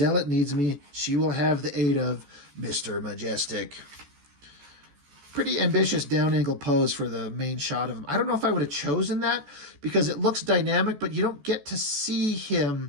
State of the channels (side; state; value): left; late; 14 ms